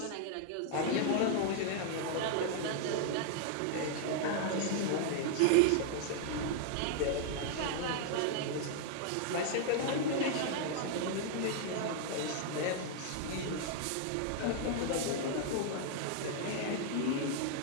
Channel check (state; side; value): different; both; correlation 0.00